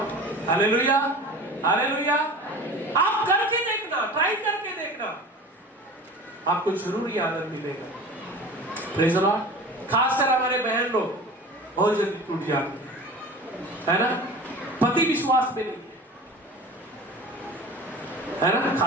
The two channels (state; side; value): normal; both; correlation 0.37